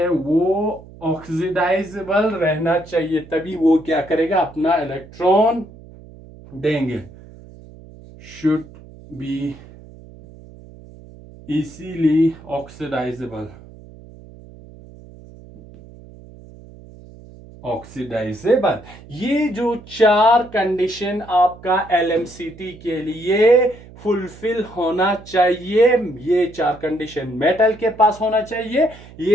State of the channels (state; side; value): noise; right; hum, 20 dB below the sound